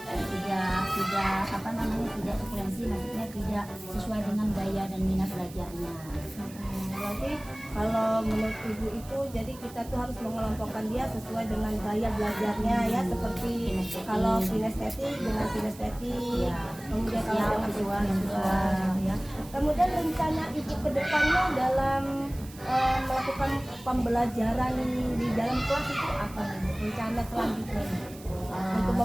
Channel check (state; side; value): noise; right; hiss, 19 dB below the sound